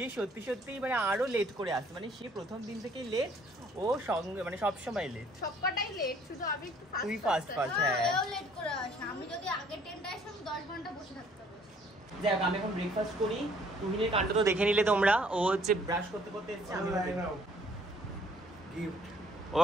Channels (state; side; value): normal; both; correlation 0.60